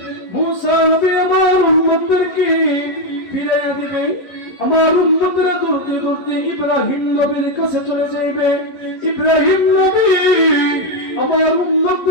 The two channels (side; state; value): right; late; 11 ms